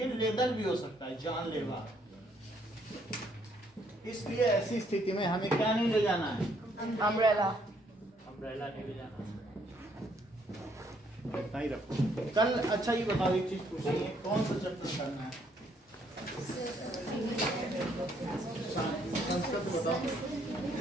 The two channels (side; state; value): both; normal; correlation 0.69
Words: लेदल भी हो सकता है, जानलेवा। इसलिए ऐसी स्थिति में हमें क्या नहीं ले जाना है? Umbrella. अम्ब्रेला नहीं ले जाना, इतना ही रखो। कल अच्छा ये बताओ, एक चीज पूछनी है, कौन सा चैप्टर करना है? संस्कृत बताओ।